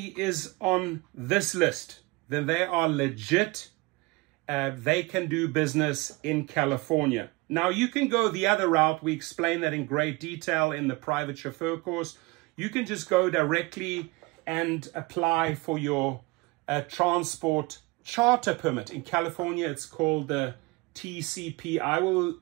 is on this list, then they are legit. They can do business in California. Now, you can go the other route. We explain that in great detail in the private chauffeur course. You can just go directly and apply for your transport charter permit. In California, it's called the TCP. I will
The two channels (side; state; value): left; quieter; 24.4 dB